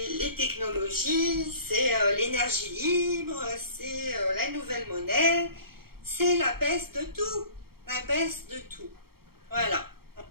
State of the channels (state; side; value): late; left; 0.94 ms